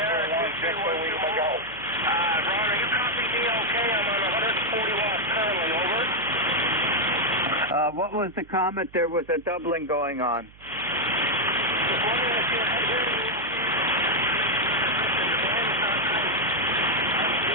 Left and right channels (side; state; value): right; noise; hum, 24 dB below the sound